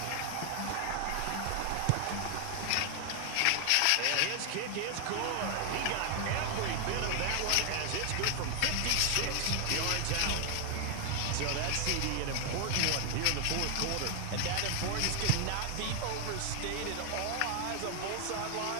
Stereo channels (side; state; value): both; different; correlation 0.00